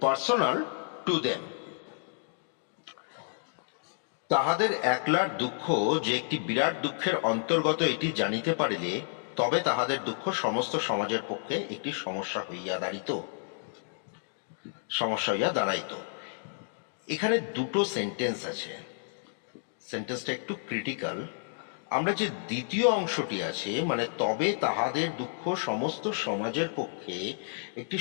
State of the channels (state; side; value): silent; right; digital silence